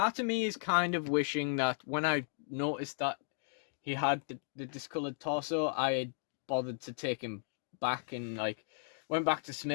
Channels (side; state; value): right; silent; digital silence